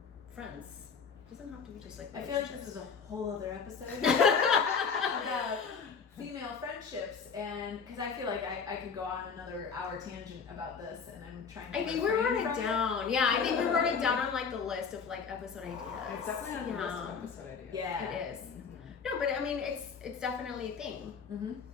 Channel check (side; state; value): right; quieter; 5.9 dB